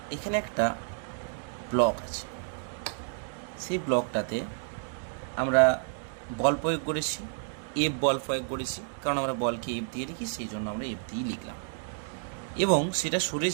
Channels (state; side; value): silent; left; 58 dB below the other